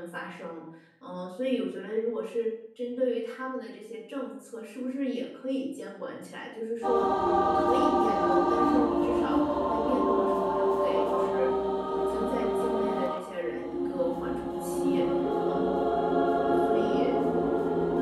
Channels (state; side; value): identical; both; correlation 1.00